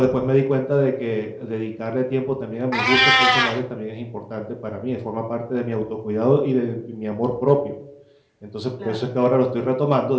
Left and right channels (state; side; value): identical; both; correlation 1.00